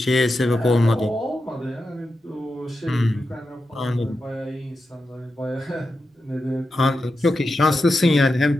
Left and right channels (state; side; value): normal; both; correlation 0.89